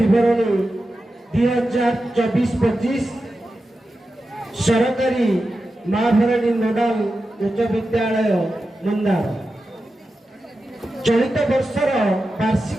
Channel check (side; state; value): both; normal; correlation 0.91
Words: 2024-25 सरकारी महाभरणी नोडाल उच्च विद्यालय मंदार चलित वर्षर